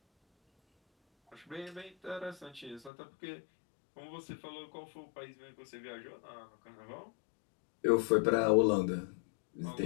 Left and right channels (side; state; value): right; drops out; at 2.9 s